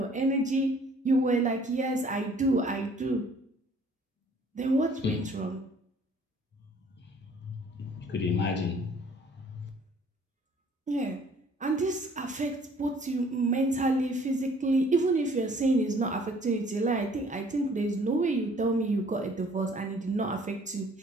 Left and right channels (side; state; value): both; normal; correlation 0.57